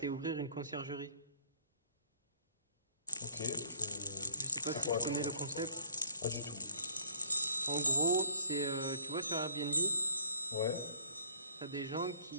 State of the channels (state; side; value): inverted; both; correlation -0.63